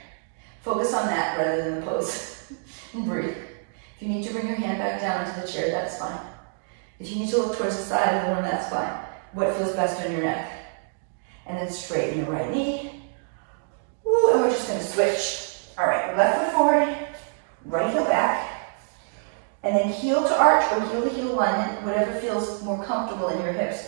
Focus on that rather than the pose. And breathe. If you need to bring your hand back down into the chair, that's fine. If you need to look towards the side of the room, that's fine. What feels best on your neck? And then straighten your right knee. Woo, and we're just gonna switch. All right, left foot forward, right heel back, and then heel to arch or heel to heel alignment, whatever feels more comfortable in your hips.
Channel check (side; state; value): left; silent; digital silence